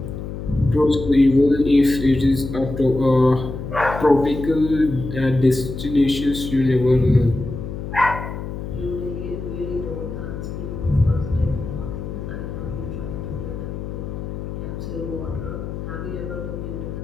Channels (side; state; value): left; noise; hum, 7 dB below the sound